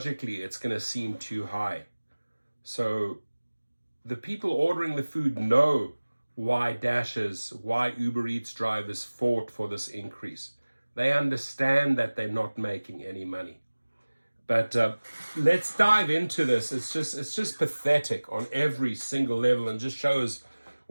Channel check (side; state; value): both; inverted; correlation -1.00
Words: it's going to seem too high. So the people ordering the food know why Dashers, why Uber Eats drivers fought for this increase. They understand that they're not making any money. But let's dive into this. It's just pathetic on every single level and just shows